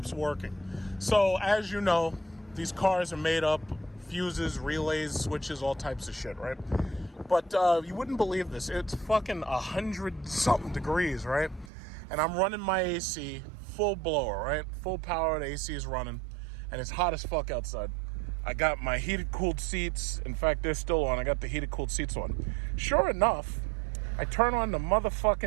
working. So as you know, these cars are made up, fuses, relays, switches, all types of shit, right? But you wouldn't believe this. It's fucking 100-something degrees, right? And I'm running my AC full blower, right? Full power, the AC is running, and it's hot as fuck outside. I got my heated cooled seats. In fact, they're still on. I got the heated cooled seats on. Sure enough, I turn on the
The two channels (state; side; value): drops out; left; at 11.7 s